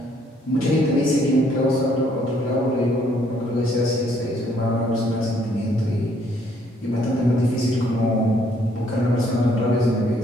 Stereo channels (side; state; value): both; normal; correlation 0.66